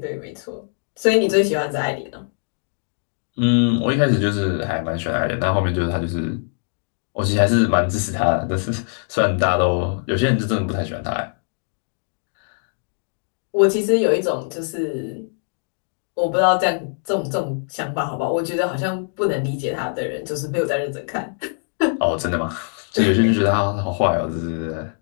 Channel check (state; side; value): silent; right; 64 dB below the other